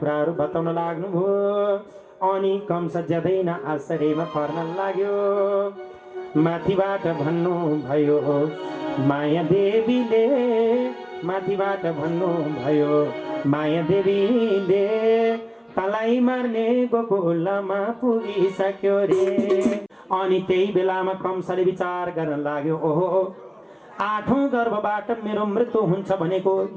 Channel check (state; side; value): identical; both; correlation 1.00